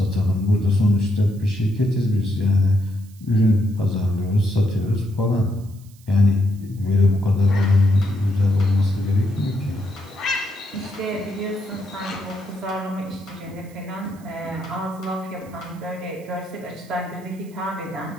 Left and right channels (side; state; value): right; noise; hiss, 27 dB below the sound